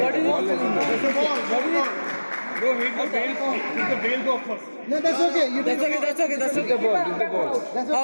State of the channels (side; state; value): both; inverted; correlation -1.00